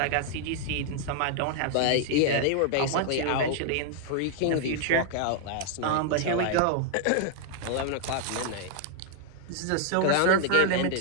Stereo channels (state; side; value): different; both; correlation 0.00